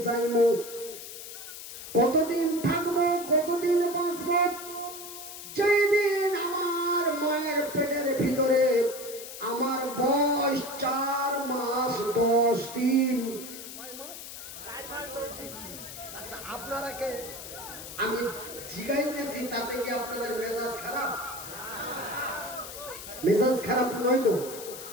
যাইবো, কতদিন থাকবো, কতদিন বাঁচবো। যেই দিন আমার মায়ের পেটের ভিতরে আমার বয়স 4 মাস 10 দিন। আচ্ছা, আপনারা কে আমি জিগাইতেছি তাতে কি আপনাদের মেজাজ খারাপ? মেজাজ খারাপ নয় তো?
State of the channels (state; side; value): noise; left; hiss, 11 dB below the sound